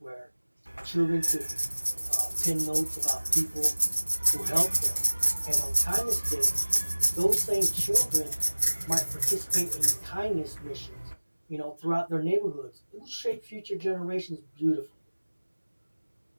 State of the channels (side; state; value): both; inverted; correlation -1.00